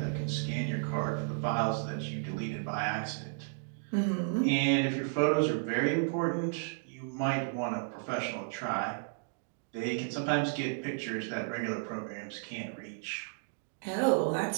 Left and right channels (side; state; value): left; silent; digital silence